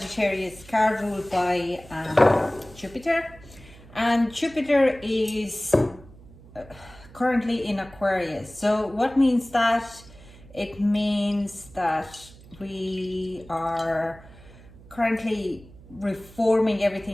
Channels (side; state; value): right; noise; hum, 21 dB below the sound